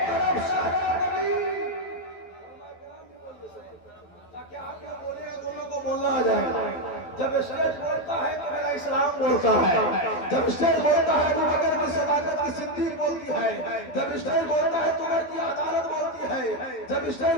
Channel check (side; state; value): right; late; 12 ms